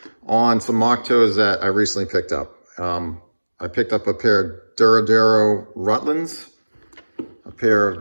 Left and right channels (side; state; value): both; inverted; correlation -1.00